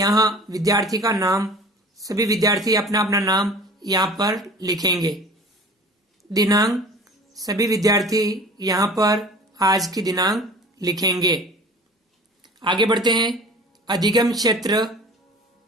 विद्यार्थी का नाम, सभी विद्यार्थी अपना अपना नाम यहाँ पर लिखेंगे। दिनांक, सभी विद्यार्थी यहाँ पर आज की दिनांक लिखेंगे। आगे बढ़ते हैं। अधिगम क्षेत्र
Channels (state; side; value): normal; both; correlation 0.42